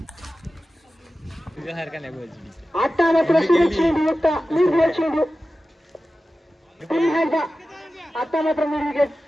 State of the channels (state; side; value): normal; both; correlation 0.94